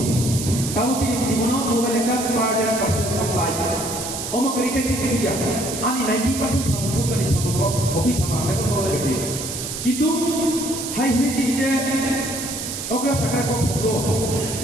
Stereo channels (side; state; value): right; noise; hiss, 6 dB below the sound